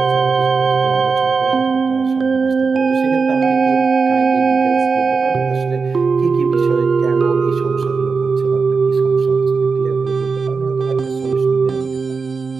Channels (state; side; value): quieter; left; 4.8 dB